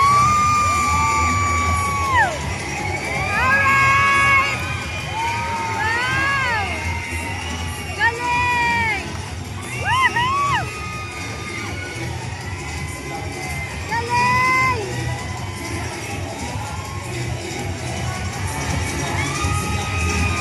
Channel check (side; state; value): both; identical; correlation 1.00